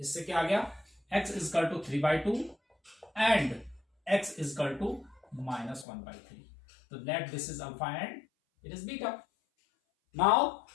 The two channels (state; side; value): drops out; right; at 5.9 s